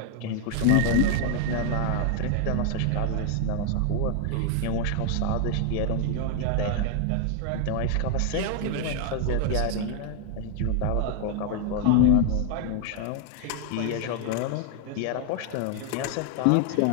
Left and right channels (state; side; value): different; both; correlation 0.00